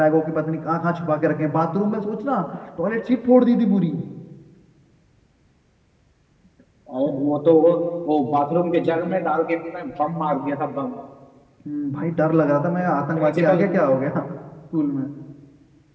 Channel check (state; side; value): identical; both; correlation 1.00